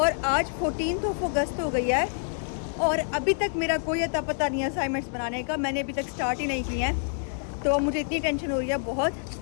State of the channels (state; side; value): silent; right; digital silence